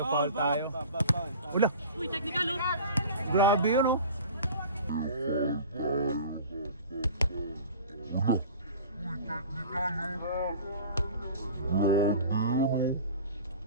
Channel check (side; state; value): both; inverted; correlation -0.40